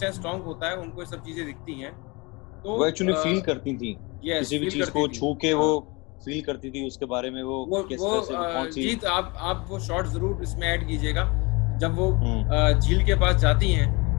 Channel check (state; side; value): quieter; right; 26.9 dB